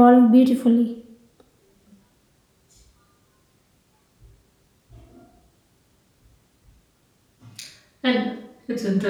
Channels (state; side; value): identical; both; correlation 1.00